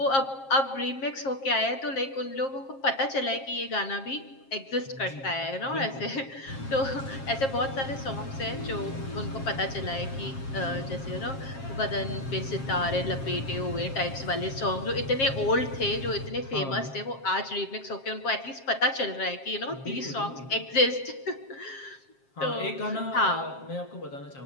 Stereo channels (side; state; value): right; late; 7.5 ms